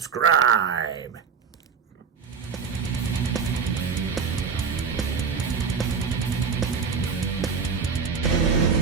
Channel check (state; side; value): quieter; left; 6.0 dB